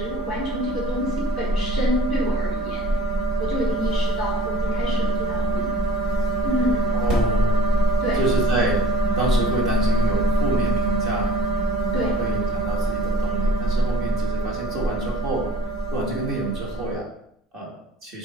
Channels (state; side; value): normal; both; correlation 0.48